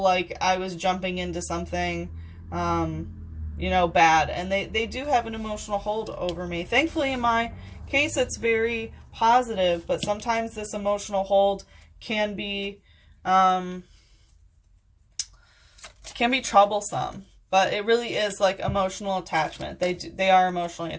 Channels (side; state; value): both; identical; correlation 1.00